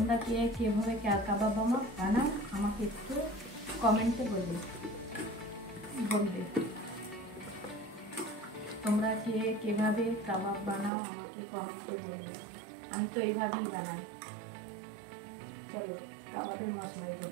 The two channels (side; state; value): left; drops out; at 10.9 s